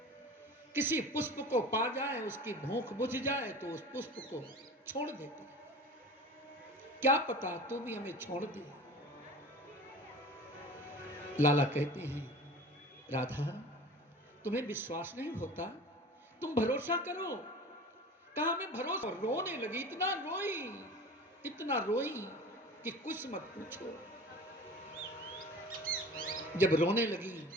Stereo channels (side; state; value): both; normal; correlation 0.38